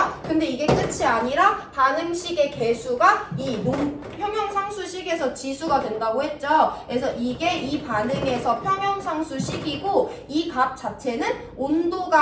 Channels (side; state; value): both; identical; correlation 1.00